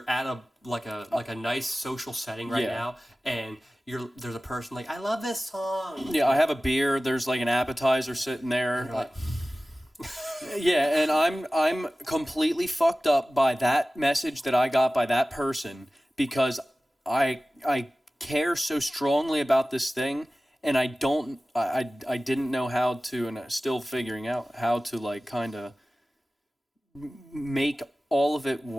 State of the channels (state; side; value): normal; both; correlation 0.97